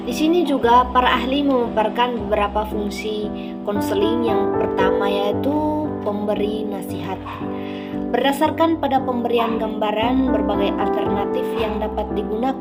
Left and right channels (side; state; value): both; identical; correlation 1.00